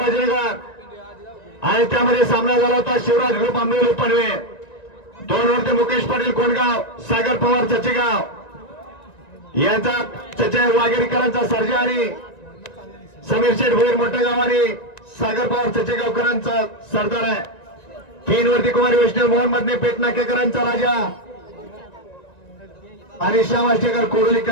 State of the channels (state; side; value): late; right; 1.9 ms